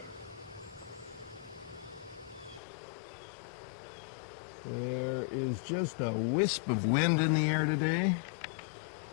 There is just a wisp of wind in the air today.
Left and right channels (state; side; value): drops out; right; at 2.6 s